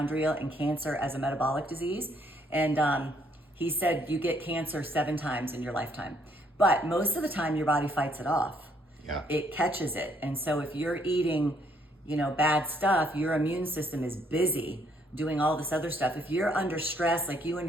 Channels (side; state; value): both; normal; correlation 0.69